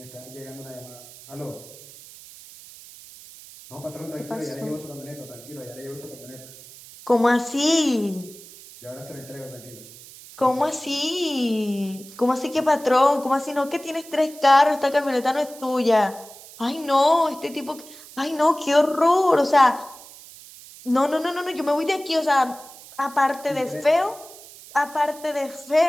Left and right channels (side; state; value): right; noise; hiss, 19 dB below the sound